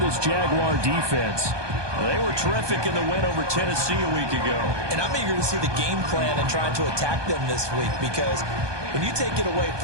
Jaguar defense. They were terrific in the win over Tennessee a week ago. And I'm eager to see the game plan and trying to attack them this week, because when you take it away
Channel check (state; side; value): late; left; 1.2 ms